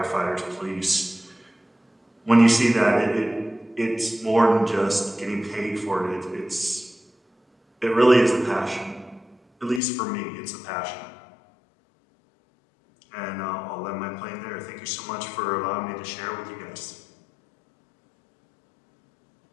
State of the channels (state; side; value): drops out; right; at 9.8 s